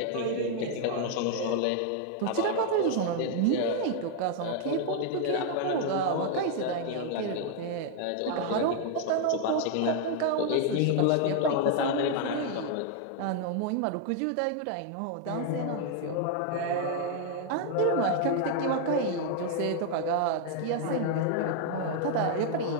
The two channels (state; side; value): different; both; correlation 0.00